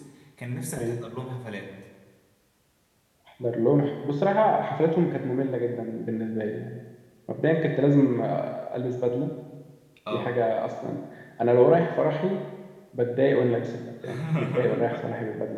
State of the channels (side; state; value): both; identical; correlation 1.00